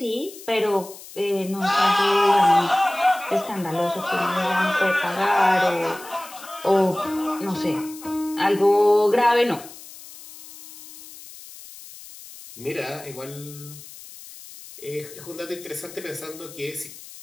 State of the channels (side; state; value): left; noise; hiss, 17 dB below the sound